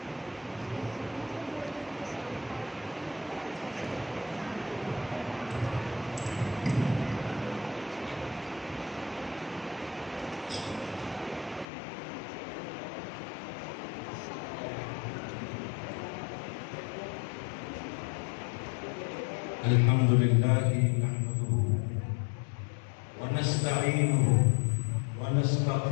الحمد لله نحمده ونستعينه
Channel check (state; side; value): drops out; right; at 11.7 s